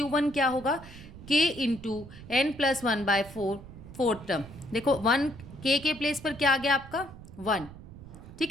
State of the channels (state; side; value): noise; right; rumble, 16 dB below the sound